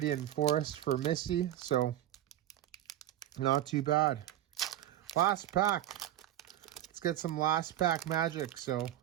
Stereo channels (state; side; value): quieter; left; 12.9 dB